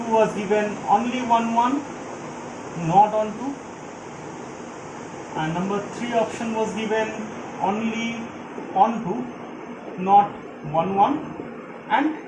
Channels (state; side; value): identical; both; correlation 1.00